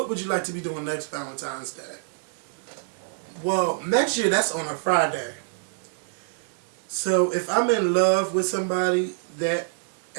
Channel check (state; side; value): silent; left; digital silence